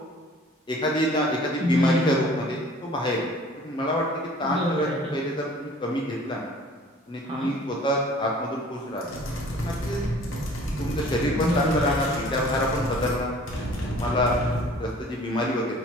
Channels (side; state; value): both; normal; correlation 0.50